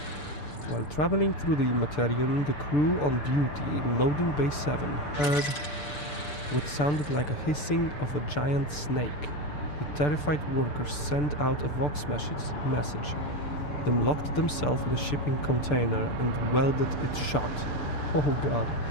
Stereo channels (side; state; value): right; late; 6.8 ms